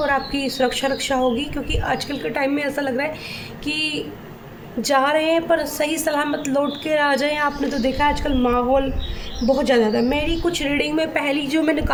आपकी सुरक्षा रक्षा होगी। क्योंकि आजकल के टाइम में ऐसा लग रहा है कि जा रहे हैं पर सही सलामत लौट के आ जाएं। आपने तो देखा आजकल माहौल बहुत ज़्यादा था। मेरी कुछ रीडिंग में पहली जो मैंने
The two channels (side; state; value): both; identical; correlation 1.00